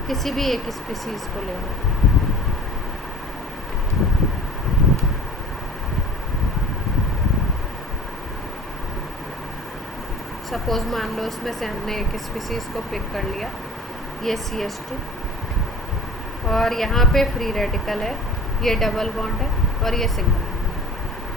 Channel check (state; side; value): normal; both; correlation 0.43